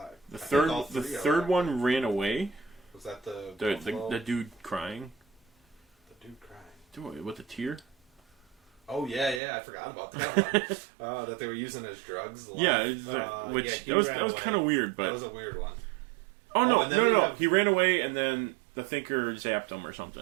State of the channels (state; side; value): drops out; left; at 9.4 s